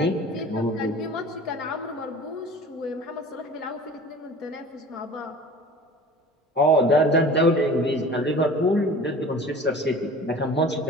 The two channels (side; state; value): both; normal; correlation 0.41